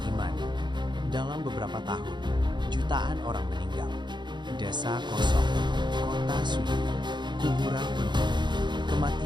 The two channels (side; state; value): left; late; 0.22 ms